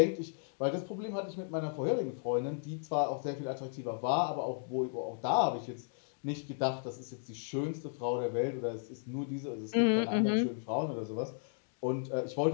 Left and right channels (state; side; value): silent; right; digital silence